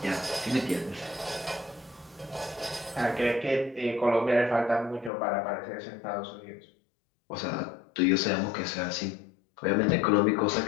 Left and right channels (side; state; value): right; drops out; at 5.1 s